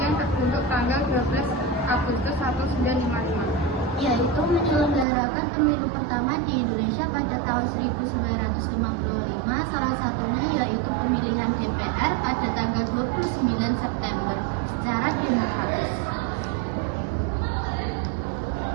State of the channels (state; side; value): drops out; left; at 5.1 s